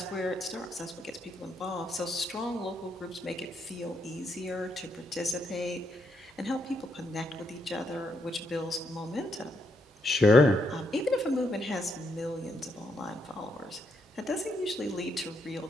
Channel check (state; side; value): normal; both; correlation 0.77